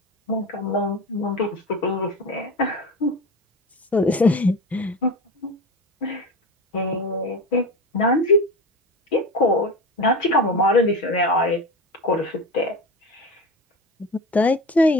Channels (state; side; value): normal; both; correlation 0.27